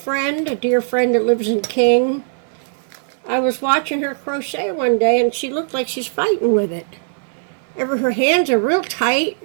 a dear friend that lives in King. I was watching her crochet one day and she looked like she's fighting with it. Her hands are real tight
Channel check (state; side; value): silent; left; digital silence